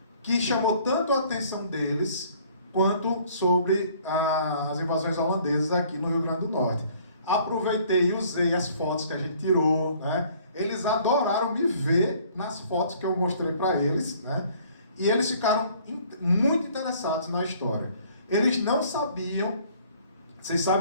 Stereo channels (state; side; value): inverted; both; correlation -0.57